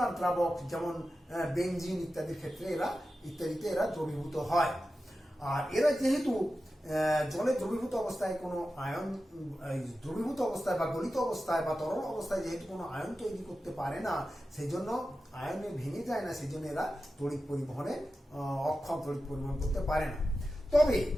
দ্রাবক যেমন বেনজিন ইত্যাদিতে এরা দ্রবীভূত হয়। আর এরা যেহেতু জলে দ্রবীভূত অবস্থায় কোনো আয়ন, দ্রবীভূত অবস্থায় বা গলিত অবস্থায় বা তরল অবস্থায় যেহেতু কোনো আয়ন তৈরি করতে পারে না, সেই জন্য আয়নে ভেঙে যায় না, সেই জন্য এরা তড়িৎ পরিবহনে অক্ষম, তড়িৎ পরিবহন করতে পারে না। তবে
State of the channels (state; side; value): normal; both; correlation 0.92